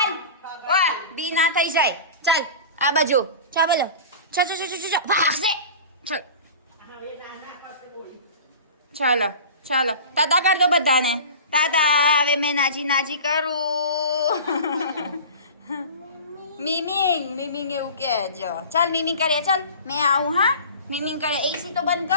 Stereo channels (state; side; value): inverted; both; correlation -0.36